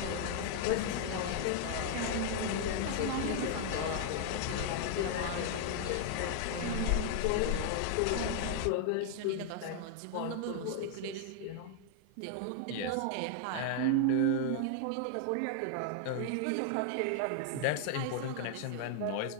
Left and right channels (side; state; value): both; different; correlation 0.00